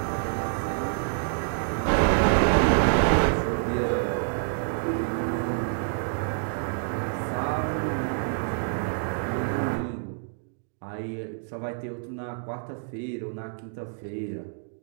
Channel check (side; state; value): left; silent; digital silence